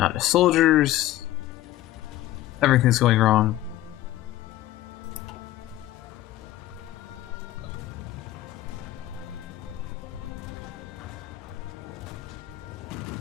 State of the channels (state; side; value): quieter; right; 14.9 dB